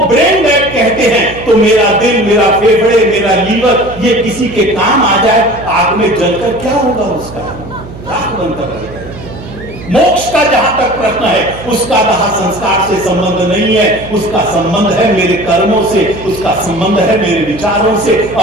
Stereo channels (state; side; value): noise; right; hum, 15 dB below the sound